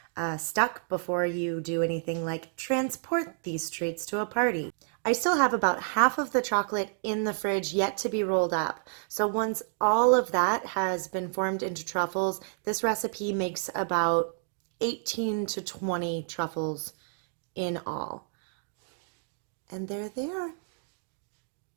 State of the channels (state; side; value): silent; left; digital silence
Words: stuck before you do anything like transport these treats to a party. I still have about half of the chocolate in the fridge yet to be rolled up. So once all of that has been formed into truffles, this recipe makes about 18 to 20 truffles in all. And there they are.